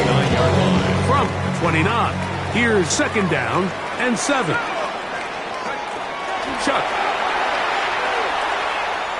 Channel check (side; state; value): both; identical; correlation 1.00